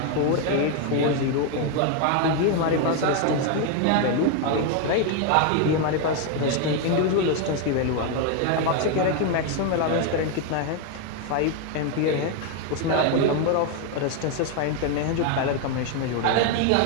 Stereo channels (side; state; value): both; different; correlation 0.01